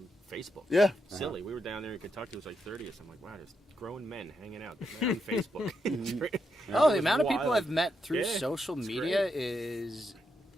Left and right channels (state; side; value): normal; both; correlation 0.82